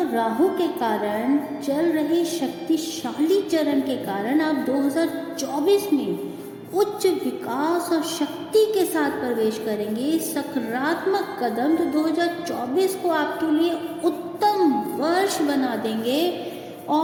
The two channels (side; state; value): both; identical; correlation 1.00